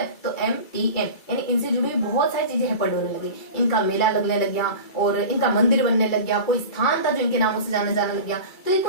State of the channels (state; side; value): late; right; 2.3 ms